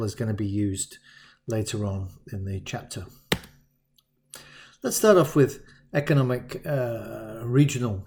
is going to be used later on in the chapter. Let's start off with economic regional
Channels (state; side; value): identical; both; correlation 1.00